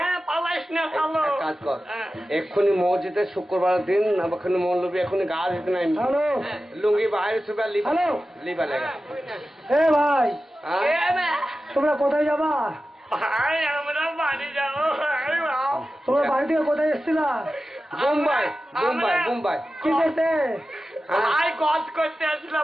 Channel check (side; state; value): both; normal; correlation 0.94